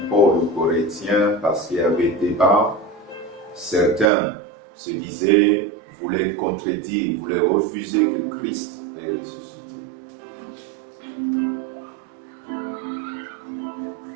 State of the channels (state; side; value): drops out; left; at 4.0 s